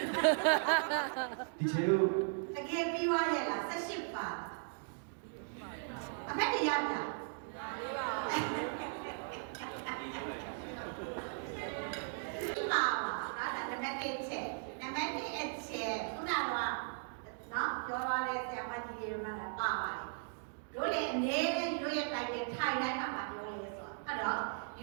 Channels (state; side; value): silent; left; digital silence